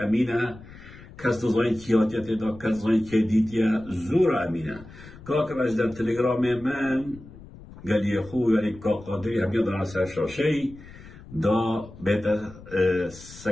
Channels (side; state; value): left; noise; rumble, 18 dB below the sound